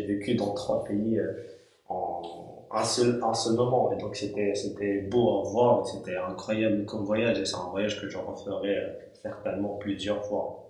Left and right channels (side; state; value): both; identical; correlation 1.00